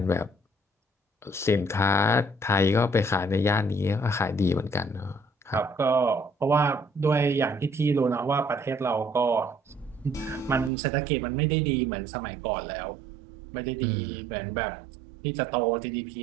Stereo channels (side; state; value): left; drops out; at 10.7 s